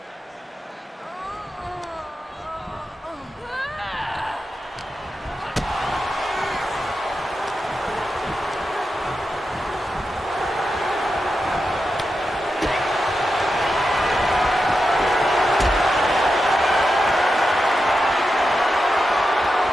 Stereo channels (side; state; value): both; normal; correlation 0.89